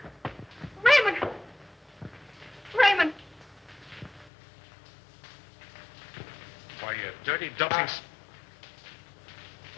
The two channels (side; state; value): right; drops out; at 4.3 s